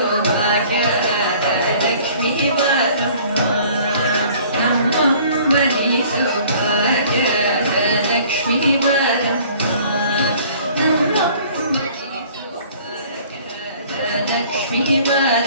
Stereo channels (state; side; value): inverted; both; correlation -0.52